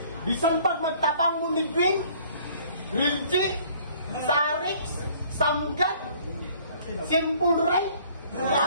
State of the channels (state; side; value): inverted; both; correlation -0.56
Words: Bisan pag magtapang mo ni Green, Grilji, Sarix, Samgat, Simple Ray,